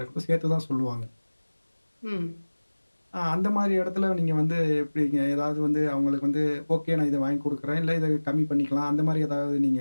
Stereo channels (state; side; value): inverted; both; correlation -1.00